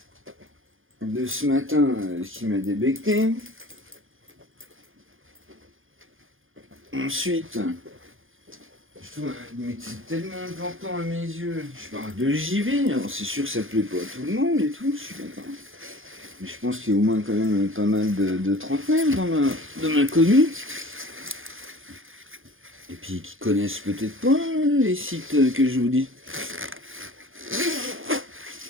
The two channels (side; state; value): left; late; 0.59 ms